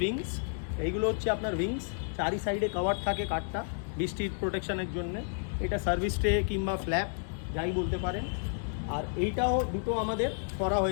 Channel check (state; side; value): silent; right; digital silence